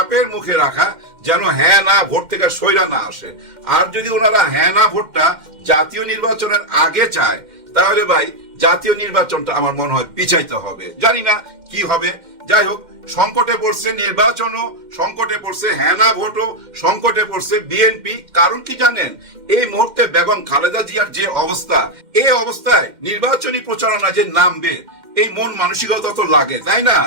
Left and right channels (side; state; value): left; late; 2.1 ms